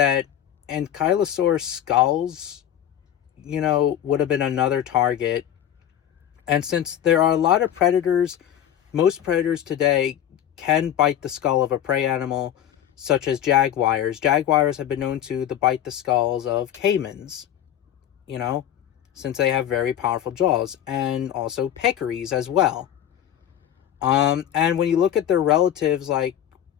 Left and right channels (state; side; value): quieter; right; 10.7 dB